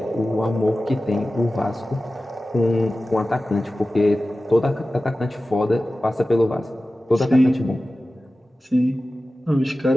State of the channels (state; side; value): normal; both; correlation 0.95